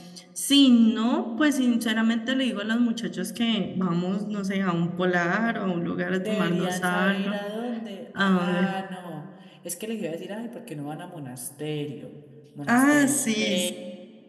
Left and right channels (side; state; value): both; identical; correlation 1.00